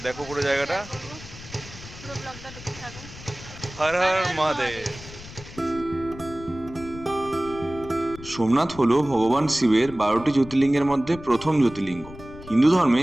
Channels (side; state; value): left; noise; rumble, 16 dB below the sound